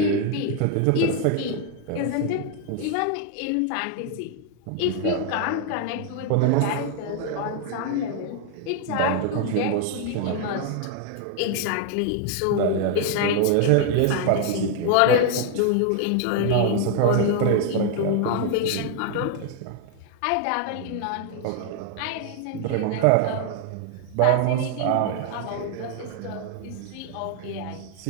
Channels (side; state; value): both; different; correlation 0.00